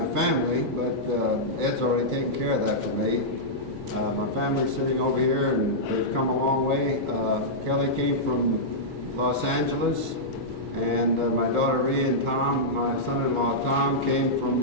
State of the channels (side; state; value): both; normal; correlation -0.11